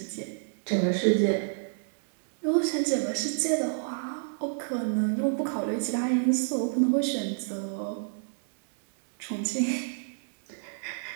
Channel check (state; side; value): silent; left; digital silence